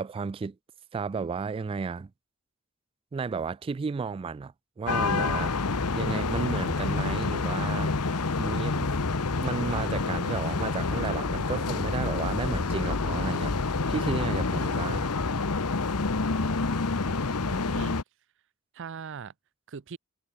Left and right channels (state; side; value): normal; both; correlation 0.35